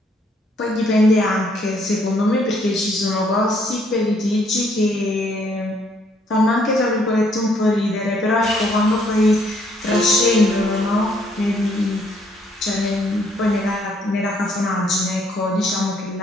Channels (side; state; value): both; normal; correlation 0.67